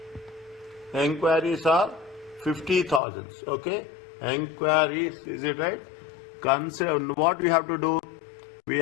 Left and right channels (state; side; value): drops out; right; at 3.0 s